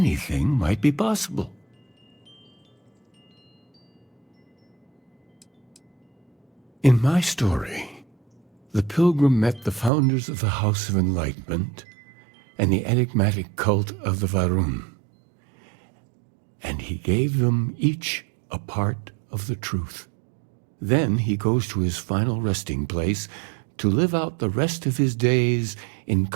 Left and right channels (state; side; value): drops out; left; at 9.9 s